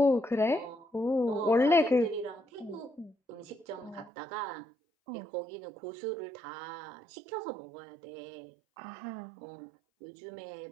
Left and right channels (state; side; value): drops out; left; at 4.1 s